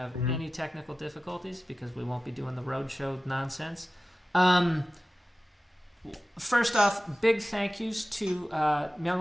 any technical difficulties because we won't be doing the roadshow nonsense. First off, big thank yous to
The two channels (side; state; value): both; normal; correlation 0.95